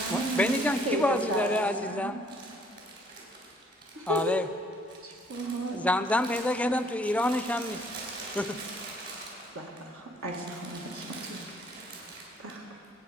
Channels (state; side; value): normal; both; correlation 0.62